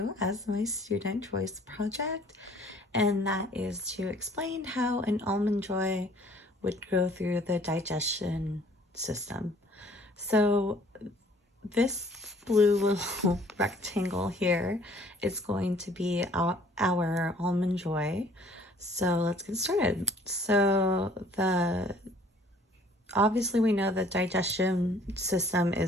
as my student choice project, and that is to explain how an almond joy would go through the digestion system. So this blue little rectangle here is going to be our almond joy. So let's get started. Obviously we know the digestion system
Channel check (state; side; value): normal; both; correlation 0.56